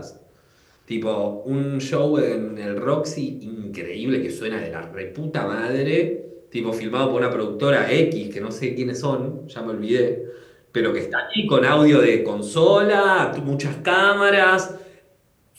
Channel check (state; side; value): identical; both; correlation 1.00